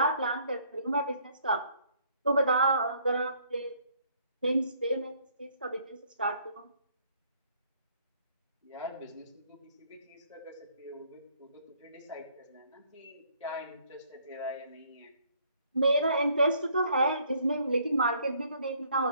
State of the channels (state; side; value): inverted; both; correlation -0.64